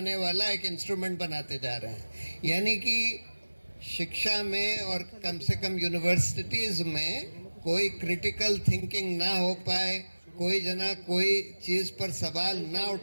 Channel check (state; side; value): inverted; both; correlation -1.00